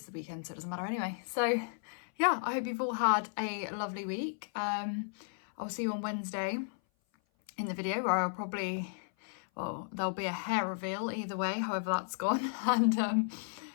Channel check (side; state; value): right; silent; 55 dB below the other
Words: the weekend, so it doesn't matter anyway. So yeah, I hope you've all had a lovely week. I'll see you on Wednesday in the video where I'll probably, well, there'll be a hair reveal either way, however that's gone. And